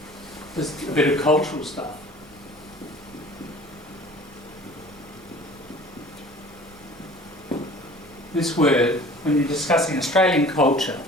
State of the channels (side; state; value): right; noise; rumble, 26 dB below the sound